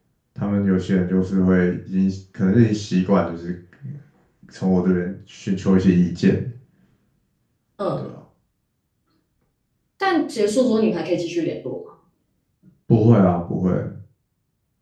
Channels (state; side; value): identical; both; correlation 1.00